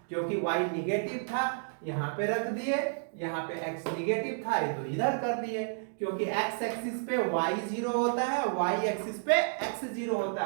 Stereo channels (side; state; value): left; silent; digital silence